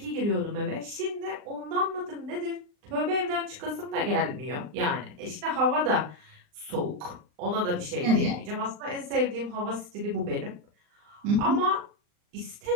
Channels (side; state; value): left; late; 39 ms